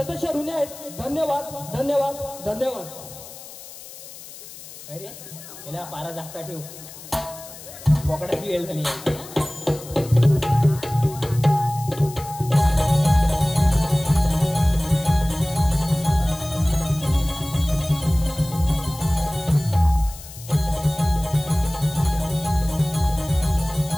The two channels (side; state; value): left; noise; hiss, 16 dB below the sound